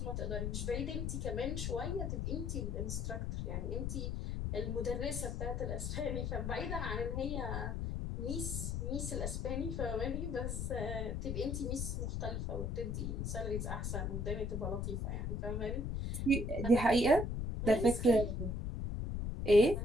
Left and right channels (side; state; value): left; noise; rumble, 2 dB below the sound